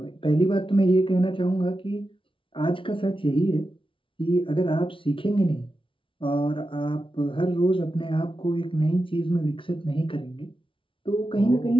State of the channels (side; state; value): right; late; 0.25 ms